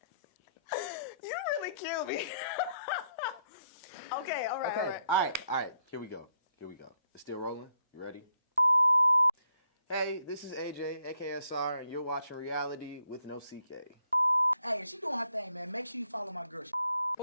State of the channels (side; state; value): both; inverted; correlation -0.73